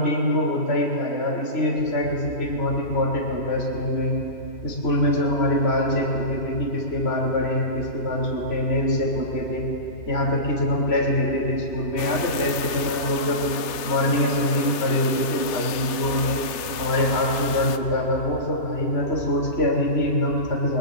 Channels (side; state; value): right; late; 3.3 ms